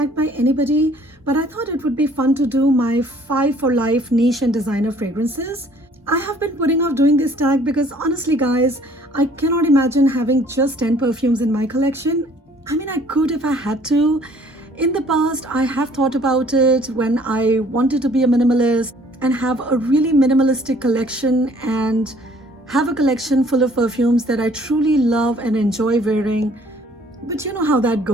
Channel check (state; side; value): normal; both; correlation 0.57